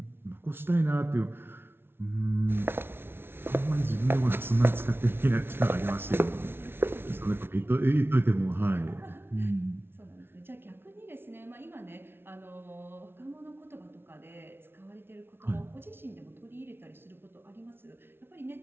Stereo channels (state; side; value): late; left; 0.11 ms